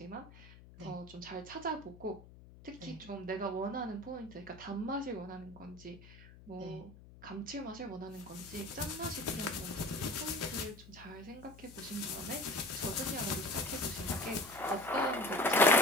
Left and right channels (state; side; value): noise; left; hum, 19 dB below the sound